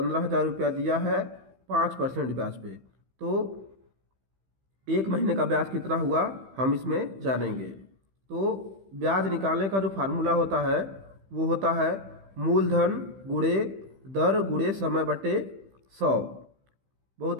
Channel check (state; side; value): late; left; 15 ms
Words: रुपया दिया है 5% ब्याज पे। तो एक महीने का ब्याज कितना हुआ हम इसमें जानेंगे। तो ब्याज निकालने का जो फार्मूला होता है वो होता है मूलधन गुणे दर गुणे समय बटे 100। बहुत